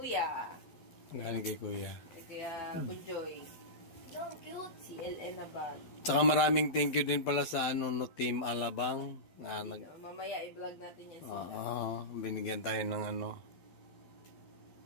Galing kay Kuya. Kay Kuya Bunjoy. No, cute. CLN na bag. Tsaka maraming thank you din pala sa Team Alabang. Mamaya i-vlog natin yan sila. Binigyan tayo ng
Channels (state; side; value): late; right; 12 ms